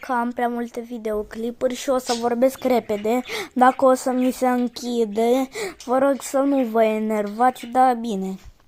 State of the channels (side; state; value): both; identical; correlation 1.00